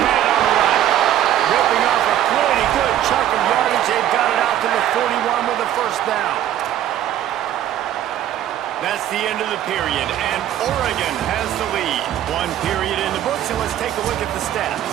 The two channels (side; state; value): left; quieter; 11.7 dB